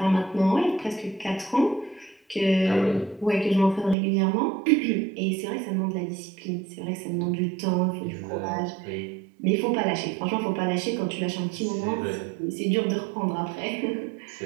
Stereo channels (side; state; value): left; drops out; at 4.0 s